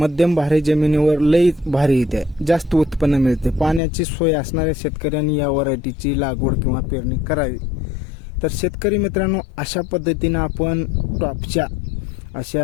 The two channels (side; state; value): right; drops out; at 3.8 s